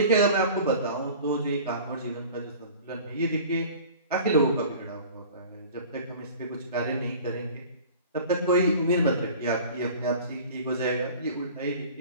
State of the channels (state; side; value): inverted; both; correlation -0.43